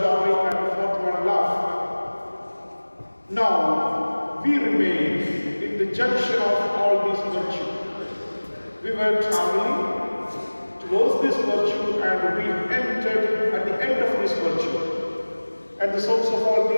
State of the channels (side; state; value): both; inverted; correlation -1.00